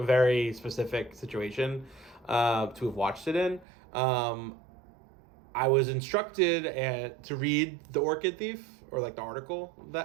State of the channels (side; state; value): left; drops out; at 3.7 s